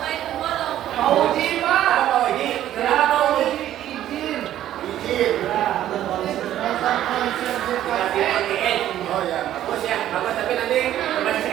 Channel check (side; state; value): left; quieter; 12.3 dB